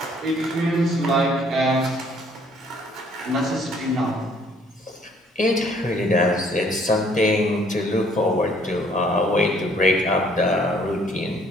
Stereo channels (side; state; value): both; normal; correlation 0.62